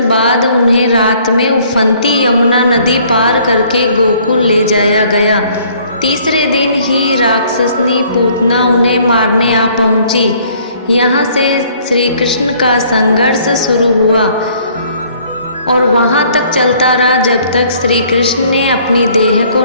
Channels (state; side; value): inverted; both; correlation -0.59